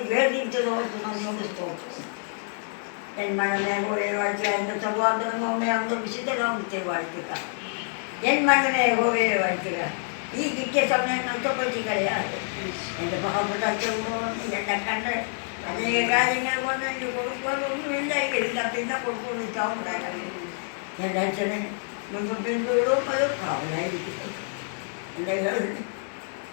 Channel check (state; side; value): silent; right; 60 dB below the other